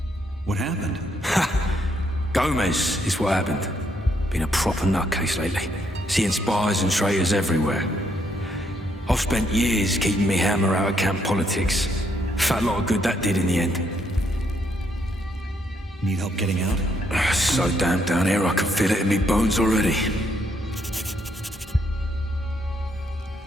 What happened? Ha! Gomez is what happened. Been a proper nutcase lately. Seeing spies and traitors everywhere. I've spent years keeping me hammer out of camp politics. Fat lot of good that did in the end. Need help getting out? So damn down here, I can feel it in me bones already.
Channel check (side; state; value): both; normal; correlation 0.73